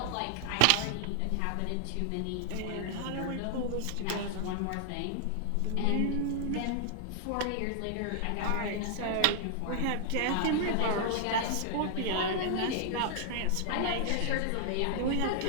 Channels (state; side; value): different; both; correlation -0.01